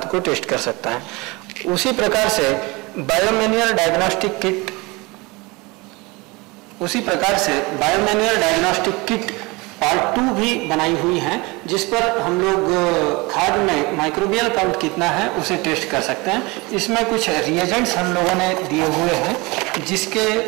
को टेस्ट कर सकता है। उसी प्रकार से बायोमैन्योर डायग्नोस्टिक किट पार्ट 2 भी बनाई हुई है, जिस पर हम लोग खाद में माइक्रोबियल काउंट कितना है उसे टेस्ट कर सकते हैं। इसमें कुछ रिएजेंट्स हम लोगों ने दिए हुए हैं, जिसके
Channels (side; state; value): left; quieter; 24.8 dB